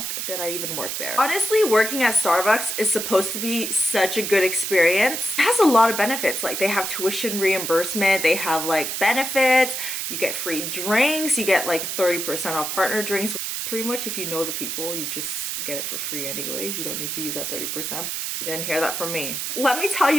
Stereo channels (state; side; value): noise; right; hiss, 3 dB below the sound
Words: did I even work there? Honestly, working at Starbucks is supposed to be such a good experience. It has a lot of benefits. Like, they have tuition reimbursement, they have like benefits, you get free drinks, you get like 30% off partner drinks. Pretty much if you know the people, you just get it for free anyways. You don't need to use that 30%. You didn't hear that from me. Let me tell